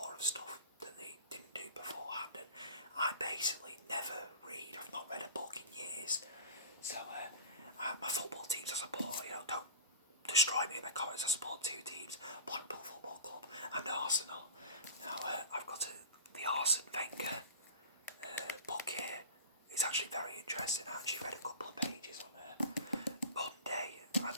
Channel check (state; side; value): inverted; both; correlation -0.32